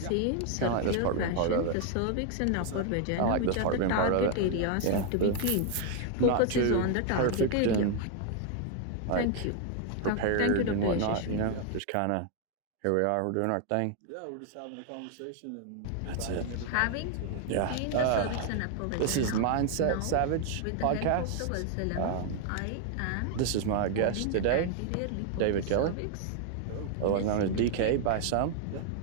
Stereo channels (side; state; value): both; different; correlation 0.00